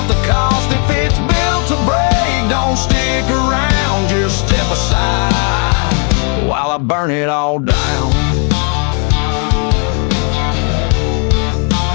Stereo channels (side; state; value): right; quieter; 39.8 dB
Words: the cost. If it's built to break, don't stick around, just step aside while I burn it all down.